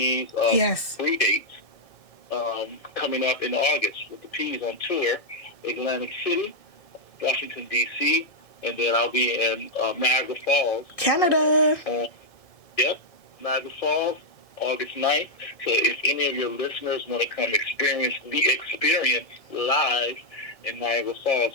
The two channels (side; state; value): right; late; 1.7 ms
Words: 3 dates coming up in August with the Peas on tour. Atlantic City, Washington, D.C., and then I'll be in Niagara Falls. Canada. Niagara Falls, August 9th. So if any of your listeners want to come experience the experience live in Niagara